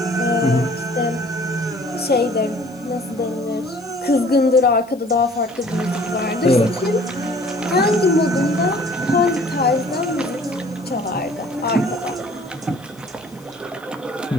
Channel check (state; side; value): noise; left; hiss, 28 dB below the sound